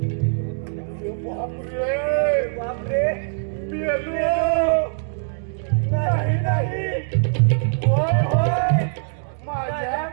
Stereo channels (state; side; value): silent; left; digital silence